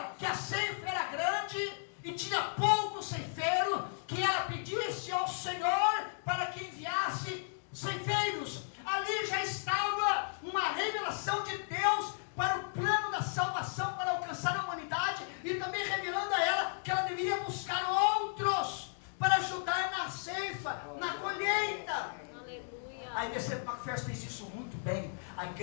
que a ceifa era grande e tinha pouco ceifeiro, que ela pedisse ao Senhor para que enviasse ceifeiros. Ali já estava uma revelação de Deus para o plano da salvação, para alcançar a humanidade, e também revelando a ela que ela deveria buscar outros para ajudar na ceifa, na colheita. Aleluia. A IBC Macpherson fez isso muito bem. A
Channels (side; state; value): right; silent; digital silence